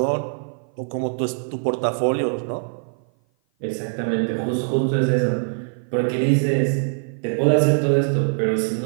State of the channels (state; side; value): silent; left; 55 dB below the other